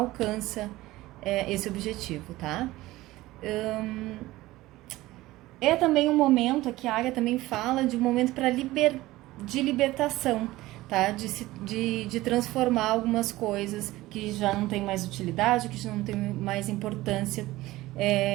esse objetivo, tá? É também um momento, aqui a águia também fala de um momento de libertação, tá? De transformar algumas coisas que já não tem mais utilidade, que já não tem mais importância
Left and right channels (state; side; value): quieter; left; 17.8 dB